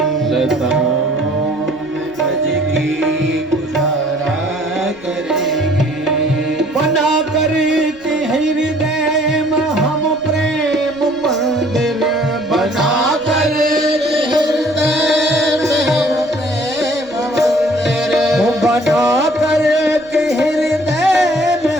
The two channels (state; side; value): noise; right; rumble, 27 dB below the sound